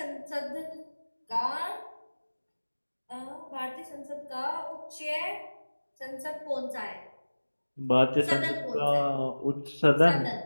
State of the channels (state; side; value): inverted; both; correlation -1.00